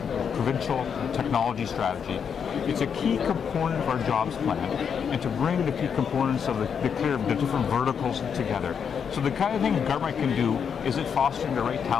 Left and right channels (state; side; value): quieter; right; 7.1 dB